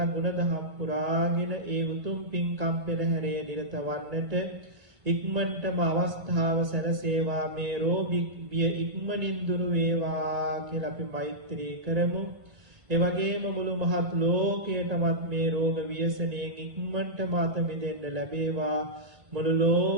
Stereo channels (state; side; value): late; left; 1.9 ms